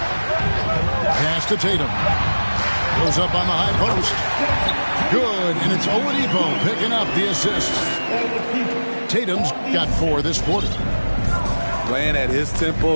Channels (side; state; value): both; inverted; correlation -1.00